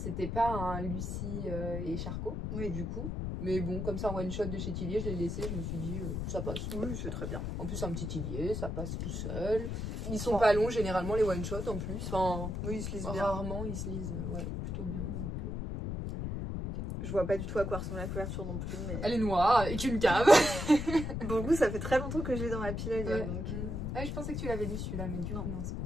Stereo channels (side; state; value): left; noise; rumble, 3 dB below the sound